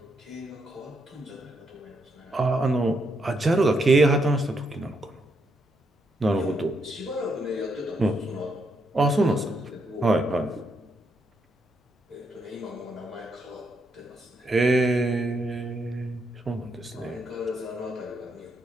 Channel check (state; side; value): normal; both; correlation 0.78